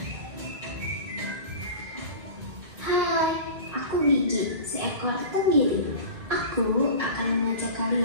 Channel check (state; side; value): late; left; 2.3 ms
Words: Hai, aku Gigi, seekor penggiling. Aku akan mengajak